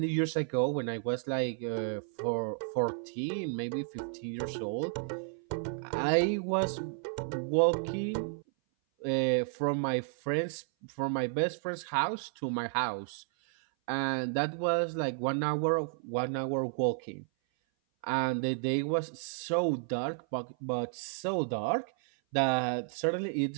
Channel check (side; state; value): left; silent; 56 dB below the other